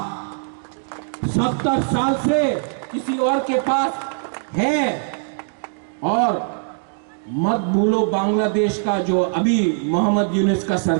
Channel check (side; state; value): left; silent; digital silence